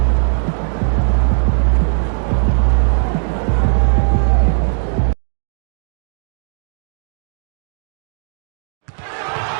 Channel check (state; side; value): silent; left; digital silence